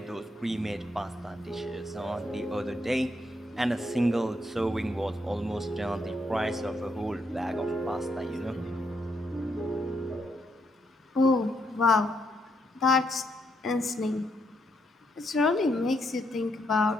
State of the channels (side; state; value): both; normal; correlation 0.76